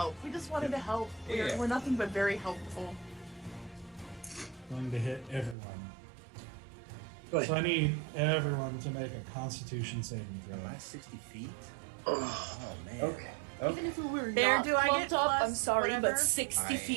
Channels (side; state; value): left; drops out; at 5.6 s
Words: Yeah. We're nothing but very helpful. Going to hit everyone. Go ahead. So I need everyone to make a Constitution saving throw. Am I 60 feet? Oh, Oh man. Okay. Even if we were Bear, not do I clumped get up, plus I'm sorry, whatever? but 60 I am-